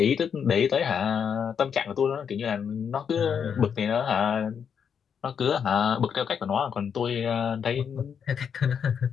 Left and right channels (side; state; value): right; quieter; 7.3 dB